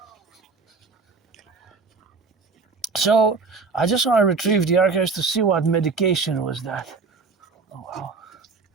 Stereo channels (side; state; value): left; quieter; 4.5 dB